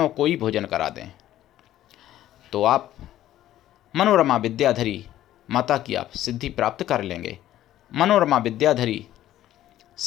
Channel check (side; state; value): right; quieter; 13.2 dB